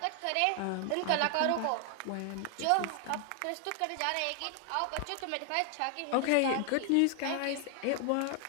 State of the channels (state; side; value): different; both; correlation 0.00